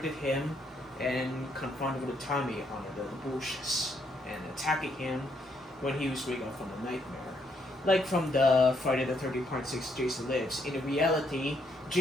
him and confronted with Tommy on the bushes and attacking him when he was waking up from the nightmare. Like from the Friday the 13th Part 6 Jason Lives. In reality,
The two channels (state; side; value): normal; both; correlation 0.73